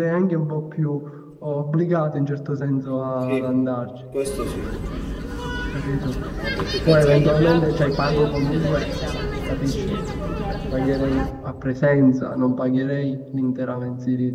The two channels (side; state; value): both; identical; correlation 1.00